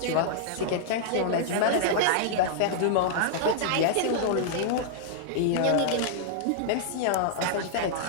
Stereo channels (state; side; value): different; both; correlation -0.01